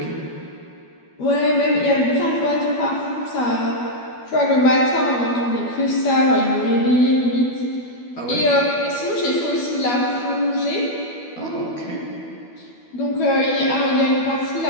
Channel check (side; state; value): right; late; 12 ms